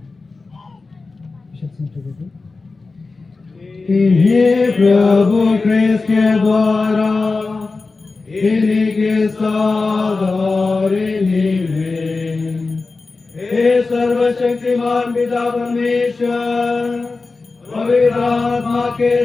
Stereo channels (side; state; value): right; quieter; 3.9 dB